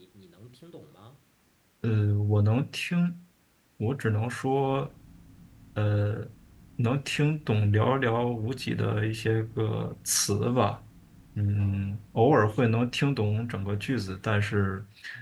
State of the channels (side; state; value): both; identical; correlation 1.00